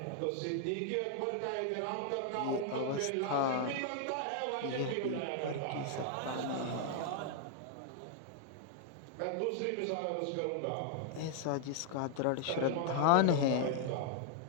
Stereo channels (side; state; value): both; different; correlation 0.00